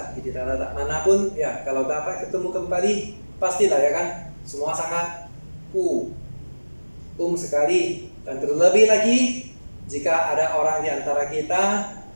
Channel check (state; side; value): inverted; both; correlation -1.00